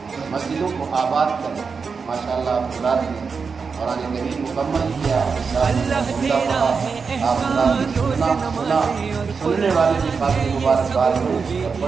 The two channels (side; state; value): left; quieter; 5.3 dB